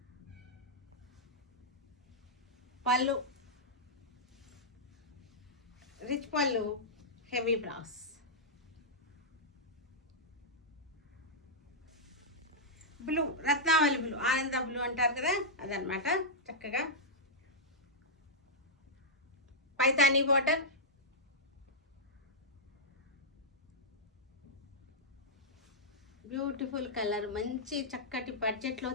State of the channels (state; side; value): normal; both; correlation -0.09